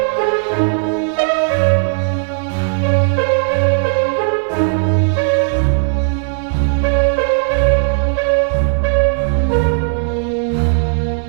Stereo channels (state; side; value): silent; left; digital silence